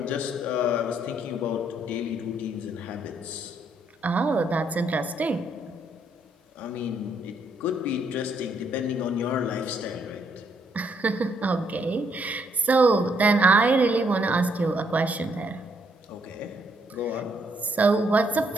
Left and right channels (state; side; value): normal; both; correlation 0.72